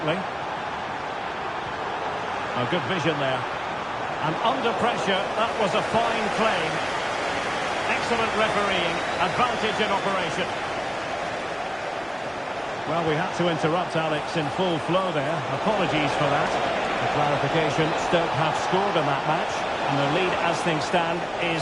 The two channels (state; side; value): identical; both; correlation 1.00